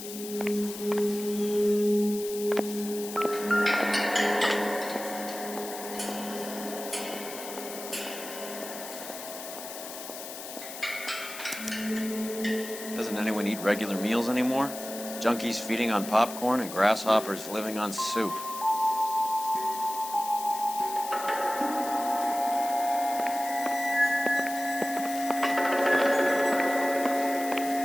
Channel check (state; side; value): noise; left; hiss, 10 dB below the sound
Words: regular meals anymore. Junkies feeding on popcorn and grasshoppers living on soup.